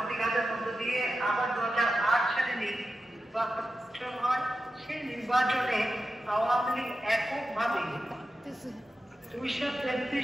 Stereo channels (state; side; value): normal; both; correlation 0.91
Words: মধ্য দিয়ে আবার 2008 সালে নির্বাচন হয়। সেই নির্বাচনে আওয়ামী লীগ এককভাবে